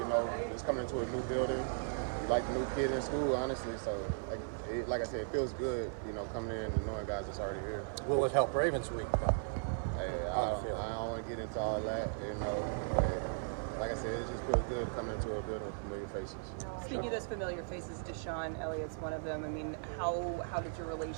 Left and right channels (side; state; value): left; silent; 53 dB below the other